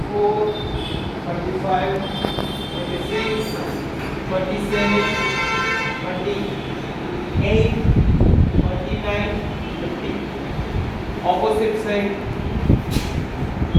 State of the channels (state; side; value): identical; both; correlation 1.00